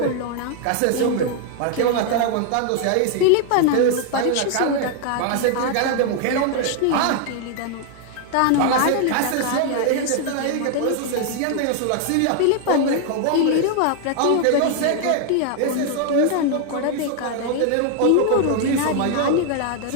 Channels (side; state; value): both; different; correlation 0.00